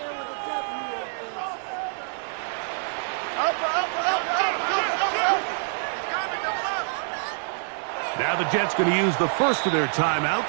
with a W. Up. Now the Jets going to use the first of their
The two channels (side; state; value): left; silent; 58 dB below the other